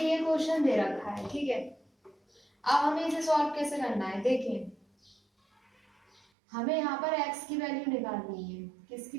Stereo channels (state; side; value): drops out; left; at 6.2 s